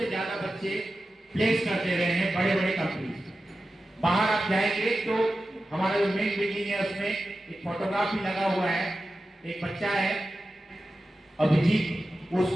ज्यादा बच्चे प्लेस करते रहे हैं बड़े बड़े कंपनी। बाहर आप जाएंगे तो हमारा जो मेन बिल्डिंग है उसमें एक फोटोग्राफ भी लगा हुआ है। एक बच्चा है अभिजीत,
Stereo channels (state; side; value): normal; both; correlation 0.93